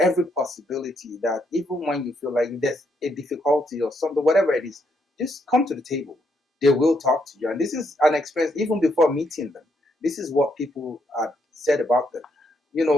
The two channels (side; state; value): both; normal; correlation 0.76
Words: possibility that even when you feel like there's a difficulty or something, whatever it is, just come to the table. They will talk to you. And this is an experience even before meeting them. This is what people said about them.